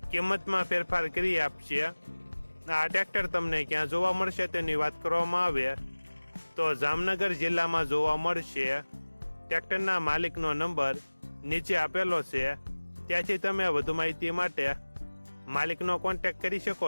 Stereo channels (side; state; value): both; inverted; correlation -1.00